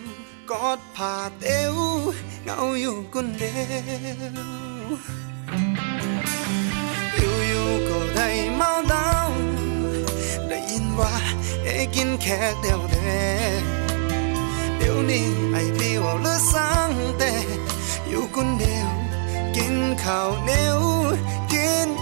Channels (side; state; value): left; silent; digital silence